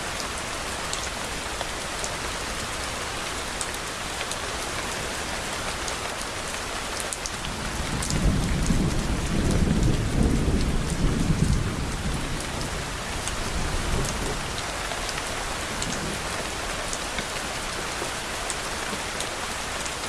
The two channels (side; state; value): both; identical; correlation 1.00